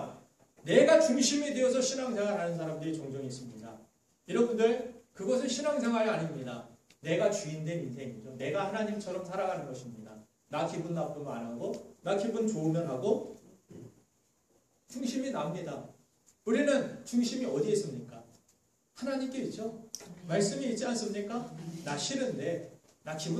내가 중심이 되어서 신앙생활하는 사람들이 종종 있습니다. 여러분들, 그것은 신앙생활이 아닙니다. 내가 주인된 인생이죠. 내가 하나님처럼 살아가는 것입니다. 나 기분 나쁘면 안 하고, 나 기분 좋으면 하고, 중심이 납니다. 우리는 중심이 어디에 있습니까? 하나님께 있죠. 말씀이 있지 않습니까? 나 싫은데, 나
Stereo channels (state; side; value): identical; both; correlation 1.00